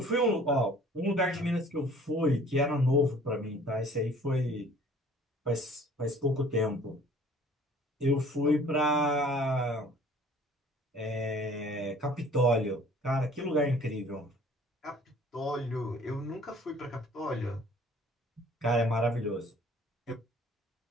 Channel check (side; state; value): both; normal; correlation 0.52